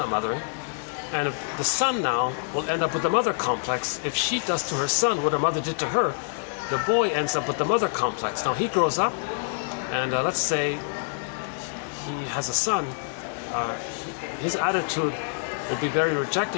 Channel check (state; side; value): silent; right; 61 dB below the other